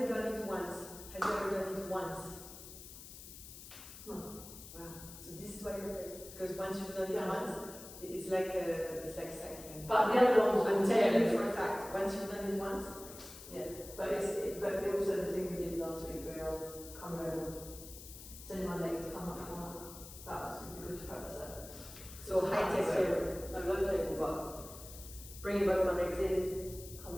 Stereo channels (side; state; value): left; noise; hiss, 14 dB below the sound